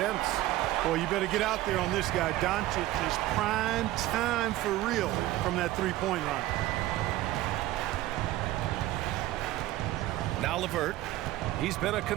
Boy, you better get out there on this guy. Doncic is prime time for real from that three-point line. Now LeVert. He's been a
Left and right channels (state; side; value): quieter; left; 15.9 dB